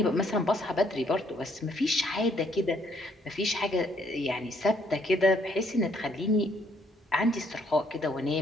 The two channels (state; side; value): normal; both; correlation 0.68